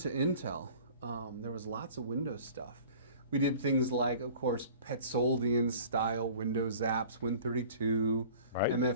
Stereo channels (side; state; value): both; inverted; correlation -0.46